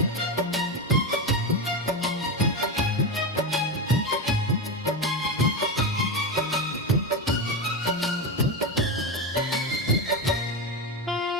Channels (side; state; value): both; normal; correlation 0.16